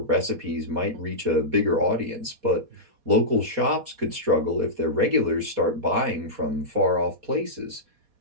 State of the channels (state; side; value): late; left; 4.2 ms